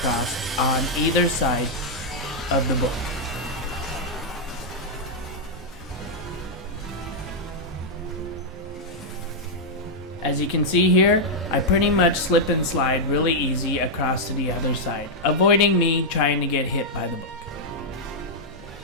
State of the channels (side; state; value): both; normal; correlation -0.05